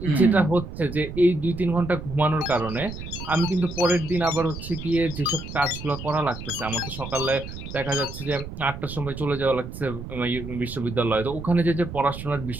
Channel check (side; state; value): right; noise; rumble, 10 dB below the sound